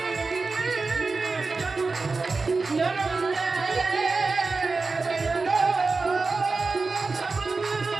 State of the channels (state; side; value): quieter; left; 4.0 dB